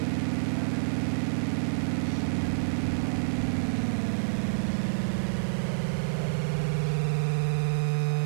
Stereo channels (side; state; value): left; silent; 59 dB below the other